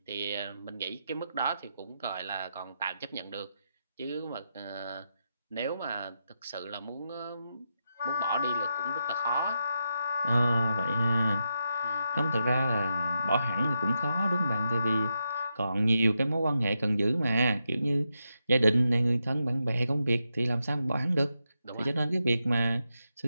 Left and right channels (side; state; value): both; inverted; correlation -0.85